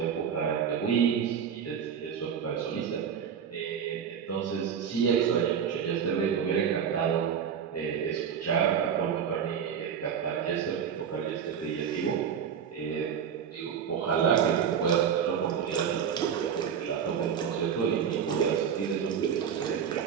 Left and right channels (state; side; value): quieter; left; 7.8 dB